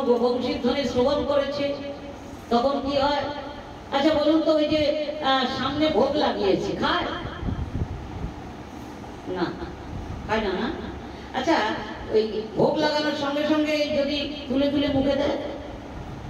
বংশীধ্বনি শ্রবণ করেছে, তখন কি হয়? আচ্ছা বলুন তো, ওই যে সামনে ভোগ লাগিয়েছে, খায় না? খায় না, না? আচ্ছা, ওই ভোগ লাগানোর সঙ্গে সঙ্গে যদি তুলে তুলে মুখে দেয়,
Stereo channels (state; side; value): identical; both; correlation 1.00